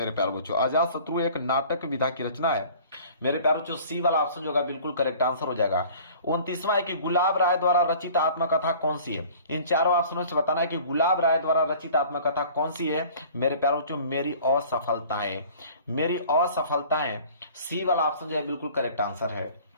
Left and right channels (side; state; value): both; inverted; correlation -0.48